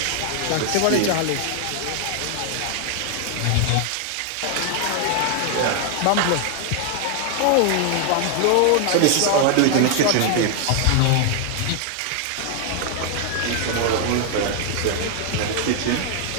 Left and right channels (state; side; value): different; both; correlation 0.00